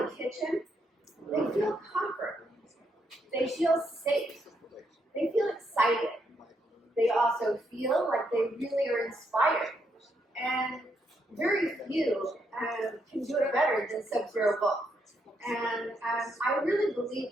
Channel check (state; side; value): normal; both; correlation 0.77